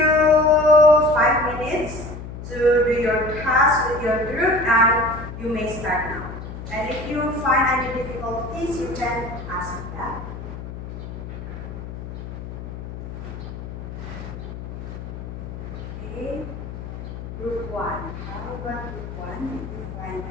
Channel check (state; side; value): noise; left; hum, 9 dB below the sound